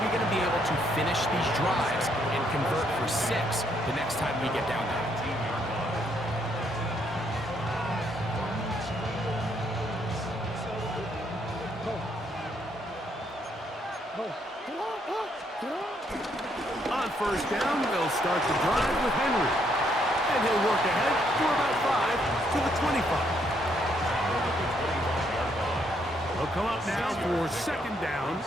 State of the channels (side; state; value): both; normal; correlation 0.72